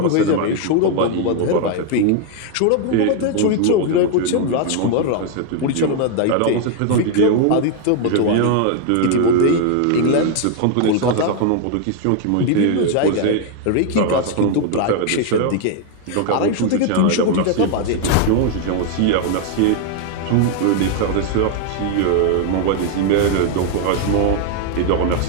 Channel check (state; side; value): different; both; correlation 0.00